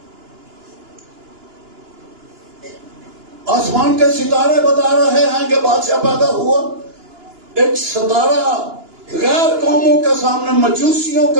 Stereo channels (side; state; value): left; late; 2.9 ms